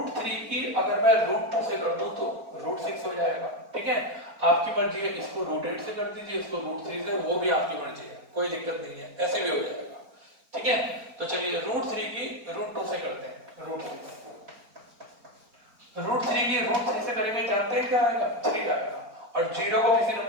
की अगर मैं √2 से कर दूं तो √6 हो जाएगा। ठीक है, आपकी मर्जी है, इसको √8 से कर दीजिए, इसको √3 से, वो भी आपकी मर्जी है, कोई दिक्कत नहीं है, ऐसे भी हो जाएगा। ठीक है, तो चलिए √3 की √2 से करते हैं, √3 की √3 से करेंगे, जानते हैं क्या आएगा 3 आएगा, और 0 को किसी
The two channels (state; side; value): late; left; 4.4 ms